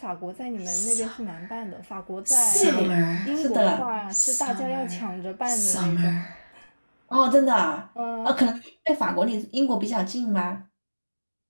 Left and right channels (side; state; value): both; inverted; correlation -1.00